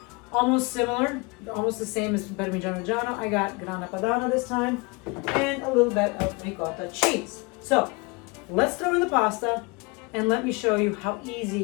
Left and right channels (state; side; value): quieter; right; 27.9 dB